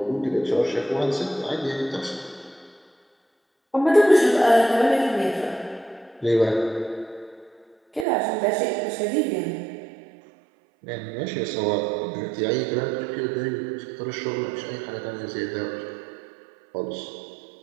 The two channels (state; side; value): drops out; left; at 8.1 s